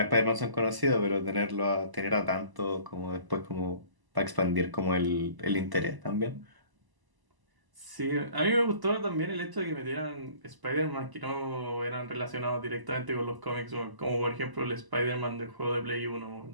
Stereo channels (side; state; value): left; late; 1.0 ms